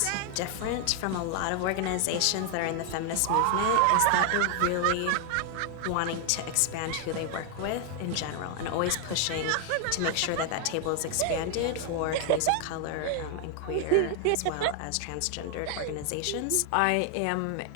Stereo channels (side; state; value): both; different; correlation 0.00